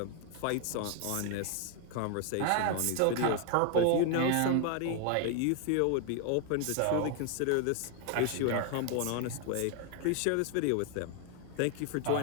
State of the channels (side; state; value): both; different; correlation 0.00